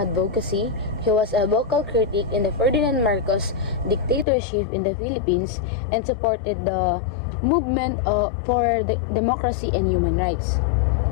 he was a vocal critic in the Ferdinand Marcos dictatorship in the Philippines and supported the movement for democracy and human rights.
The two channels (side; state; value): right; drops out; at 4.2 s